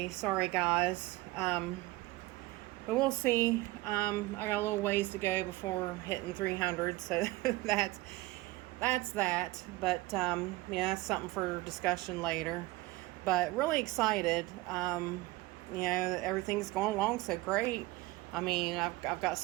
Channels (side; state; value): left; quieter; 19.9 dB